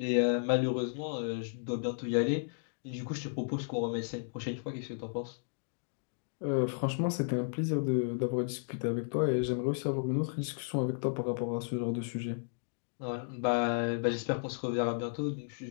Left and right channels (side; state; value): right; silent; digital silence